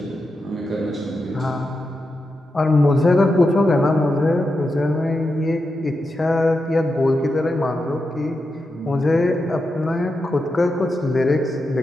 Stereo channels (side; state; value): both; normal; correlation 0.88